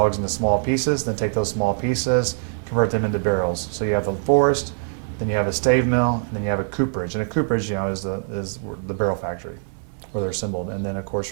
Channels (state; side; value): silent; left; digital silence